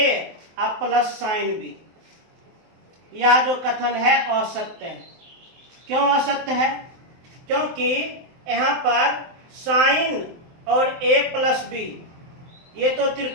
प्लस साइन बी। यह जो कथन है असत्य है। क्यों असत्य है? क्योंकि यहाँ पर साइन और a प्लस बी ये तो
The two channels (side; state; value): left; late; 23 ms